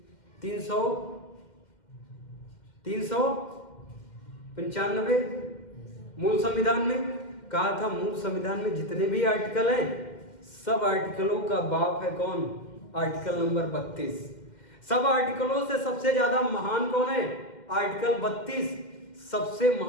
395 मूल संविधान में। कहा था मूल संविधान में जितने भी आर्टिकल हैं, सब आर्टिकलों का बाप है कौन? Article number 32। सब आर्टिकलों से सबसे ज्यादा महान कौन है? आर्टिकल 32। सबसे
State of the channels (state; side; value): late; right; 2.1 ms